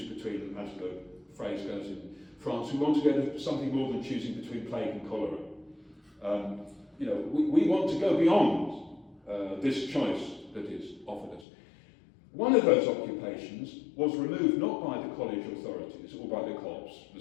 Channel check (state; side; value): drops out; right; at 11.5 s